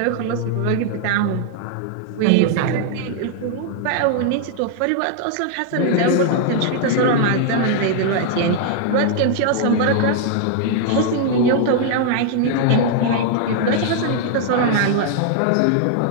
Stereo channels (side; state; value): both; different; correlation 0.00